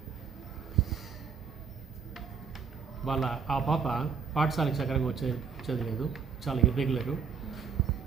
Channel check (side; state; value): left; quieter; 6.2 dB